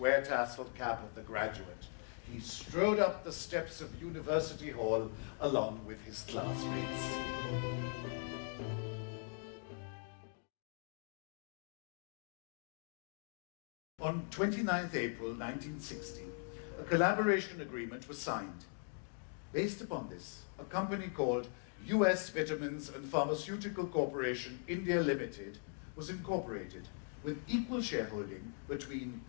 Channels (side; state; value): right; silent; 51 dB below the other